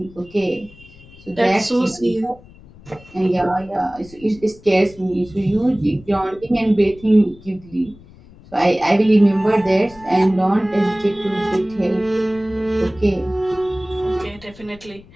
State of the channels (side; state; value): left; noise; rumble, 23 dB below the sound